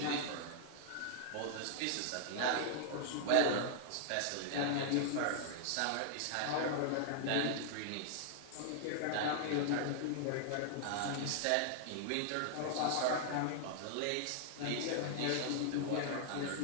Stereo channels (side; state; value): both; different; correlation -0.01